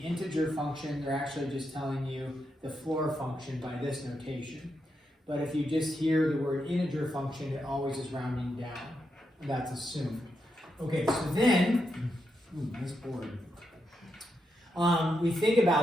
function, they're actually just telling you the floor function by this notation. But if you just hear the word integer function, it always is rounding down. That's assumed. Okay, so then, nice board. We think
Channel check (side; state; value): both; normal; correlation 0.84